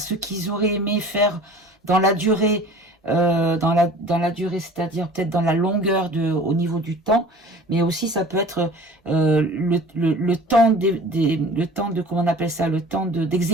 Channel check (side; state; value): both; normal; correlation 0.44